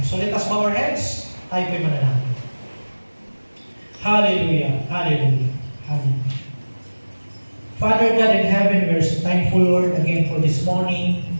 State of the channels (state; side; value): inverted; both; correlation -1.00